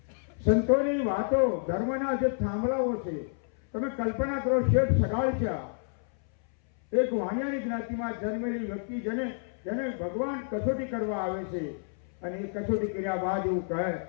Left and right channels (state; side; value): silent; right; 58 dB below the other